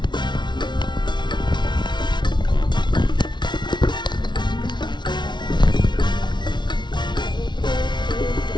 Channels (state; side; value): late; right; 0.22 ms